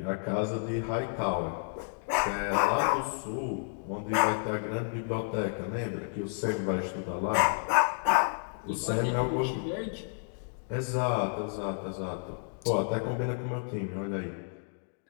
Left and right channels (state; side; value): silent; right; digital silence